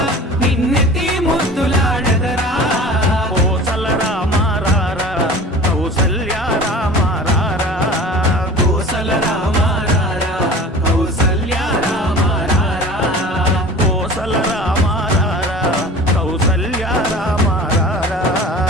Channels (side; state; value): both; normal; correlation 0.39